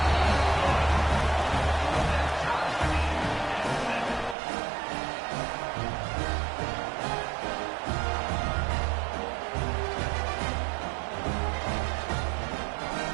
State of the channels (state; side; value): drops out; left; at 4.4 s